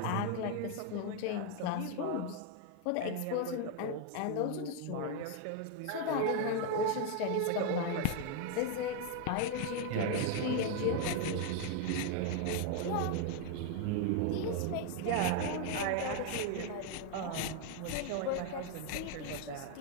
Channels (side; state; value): both; different; correlation 0.01